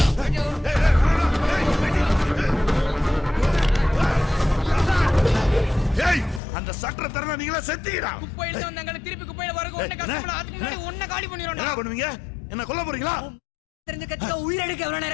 ஏய் அந்த சட்டரை தரனா நீங்களா செத்தீங்கடா. குப்பையில வந்தாங்க திருப்பி குப்பையில வரக ஒண்ணே கஷ்டப்பட அதுக்கு முன்னாடி ஒண்ணே காலி பண்ணிரோம்டா. என்ன பண்ணுவீங்க? என்ன கொல்ல போறீங்களா? தெரிஞ்ச கட்சிக்கு உயிர் எடுக்க எவ்வளவு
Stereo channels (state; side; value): drops out; right; at 6.4 s